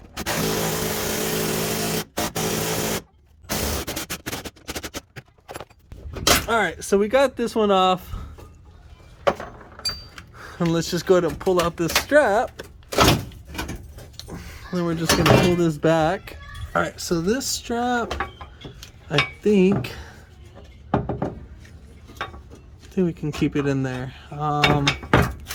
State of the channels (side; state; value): both; identical; correlation 1.00